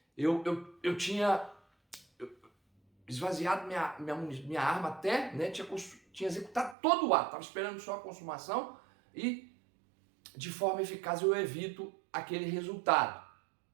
eu tinha esvaziado minha arma até, né, tinha executado todo o ato, estava esperando só a consumação e de forma eficaz eu evito aquele resultado.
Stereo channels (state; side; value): drops out; left; at 6.8 s